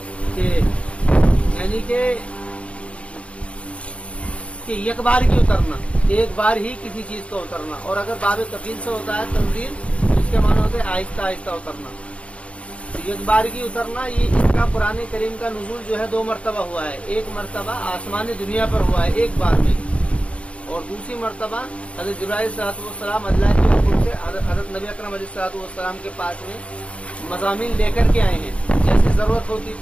کہ یعنی کہ ایک بار ہی اترنا، ایک بار ہی کسی چیز کو اترنا. اور اگر باب تفصیل سے ہوتا ہے تنزیل، اس کے معنی ہوتے ہیں آہستہ آہستہ اترنا. ایک بار کی اترنا، یہ اس کا قرآن کریم کا نزول جو ہے 2 مرتبہ ہوا ہے. ایک مرتبہ آسمان دنیا پر ہوا ہے ایک بار میں، اور دوسری مرتبہ حضرت جبرائیل علیہ الصلوۃ والسلام اللہ کے حکم سے حضرت نبی اکرم علیہ الصلوۃ والسلام کے پاس میں مضامین لے کر کے آئے ہیں. جیسی ضرورت ہوتی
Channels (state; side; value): late; right; 0.062 ms